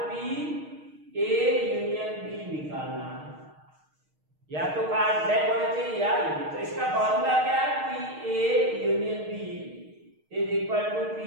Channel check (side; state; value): left; late; 6.4 ms